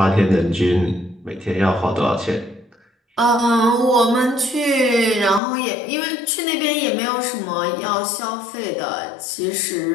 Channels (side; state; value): right; drops out; at 5.4 s